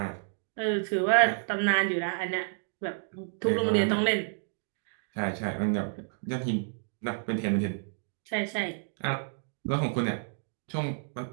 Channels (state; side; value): silent; left; digital silence